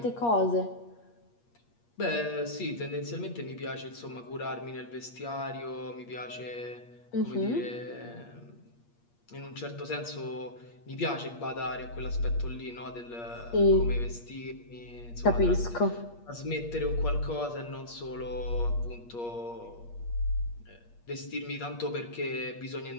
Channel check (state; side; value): late; right; 8.5 ms